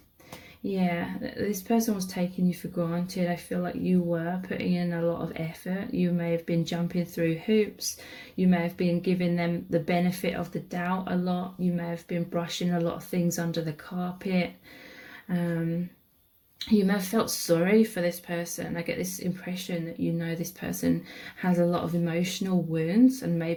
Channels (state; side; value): identical; both; correlation 1.00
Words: yeah, this person was taking you for granted. I feel like you were putting in a lot of effort. You may have been jumping through hoops. You may have been giving them the benefit of the doubt a lot. You may have been brushing a lot of things under the carpet. You may have felt sorry for this person. I get this impression that you know this person has a lot of emotional wounds and